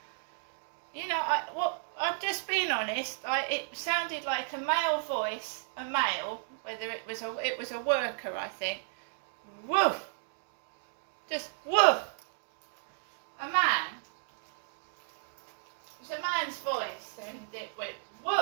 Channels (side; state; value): left; silent; digital silence